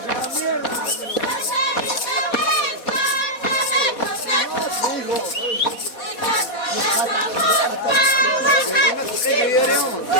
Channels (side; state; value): right; late; 4.1 ms